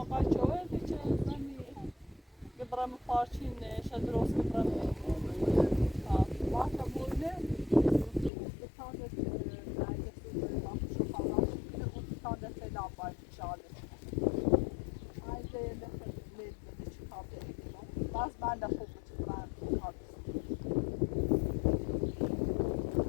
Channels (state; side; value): drops out; right; at 8.3 s